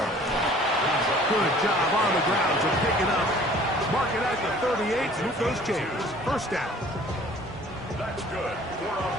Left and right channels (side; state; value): both; normal; correlation 0.51